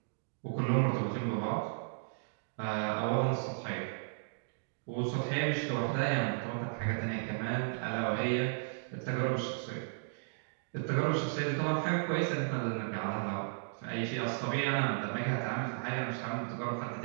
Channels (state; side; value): silent; left; digital silence